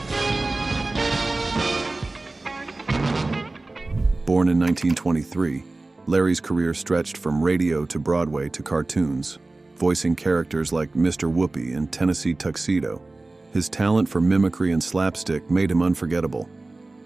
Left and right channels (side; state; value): left; quieter; 3.1 dB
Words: Born in 1923, Larry's career stretched from radio to Broadway to cartoons, voicing characters like Mr. Whoopi in Tennessee Tuxedo. His talent for mimicry and slapstick made him unforgettable.